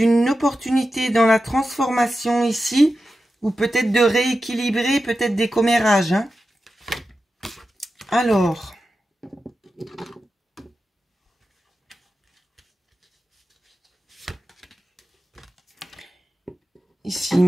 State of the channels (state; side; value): normal; both; correlation 0.92